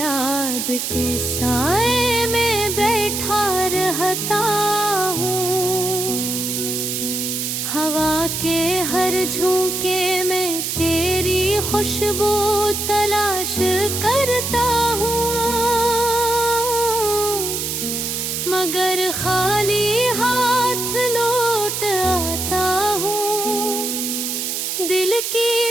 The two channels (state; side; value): noise; right; hiss, 2 dB below the sound